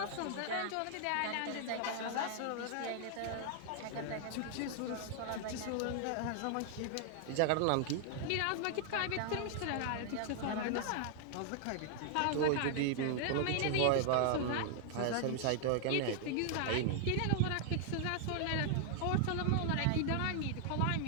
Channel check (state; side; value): different; both; correlation 0.00